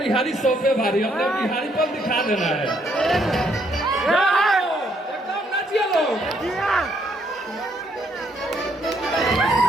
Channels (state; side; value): normal; both; correlation 0.71